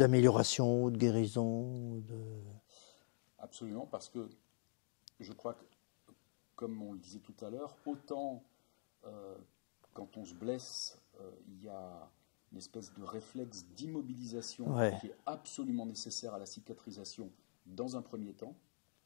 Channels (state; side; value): silent; right; digital silence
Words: de guérison. Absolument, parce que je crois que, comme on le disait tout à l'heure, autant quand on se blesse, il y a une espèce de réflexe d'immobilisation qui est absolument nécessaire à la cicatrisation dans un premier temps,